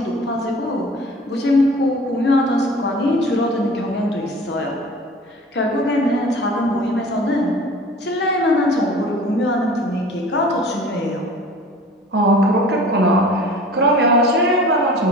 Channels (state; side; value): normal; both; correlation 0.44